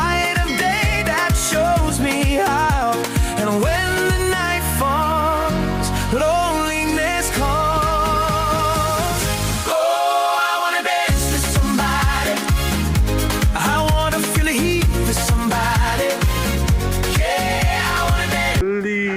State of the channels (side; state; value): both; identical; correlation 1.00